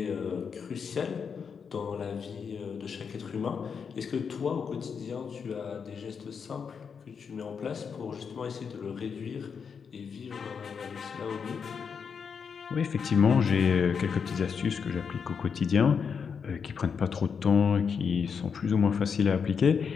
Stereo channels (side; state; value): right; quieter; 6.3 dB